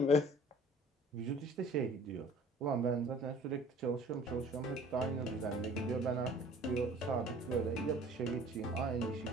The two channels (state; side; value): normal; both; correlation 0.50